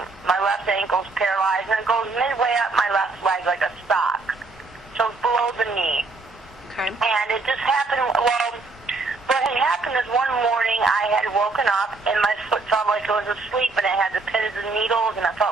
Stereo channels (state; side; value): quieter; left; 3.7 dB